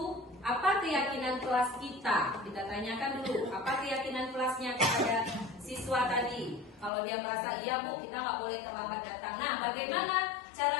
apa keyakinan kelas kita? Kita tanyakan dulu, apa keyakinan kelasnya kepada siswa tadi? Kalau dia merasa, iya bu, kita nggak boleh terlambat datang. Nah, bagaimana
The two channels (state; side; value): drops out; right; at 6.9 s